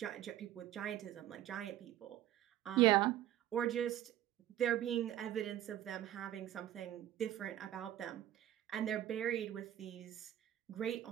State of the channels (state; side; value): quieter; left; 12.7 dB